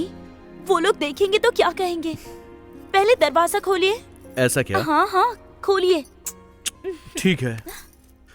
वो लोग देखेंगे तो क्या कहेंगे? पहले दरवाजा खोलिए। ऐसा क्या? हाँ हाँ, खोलिए। ठीक है।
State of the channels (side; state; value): both; identical; correlation 1.00